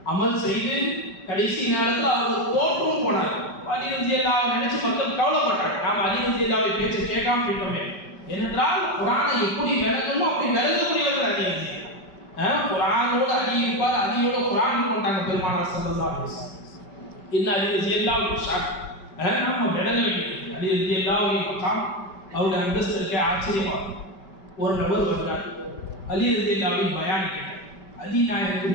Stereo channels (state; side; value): late; right; 5.2 ms